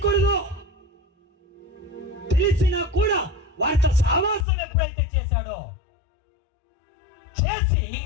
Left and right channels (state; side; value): drops out; right; at 4.5 s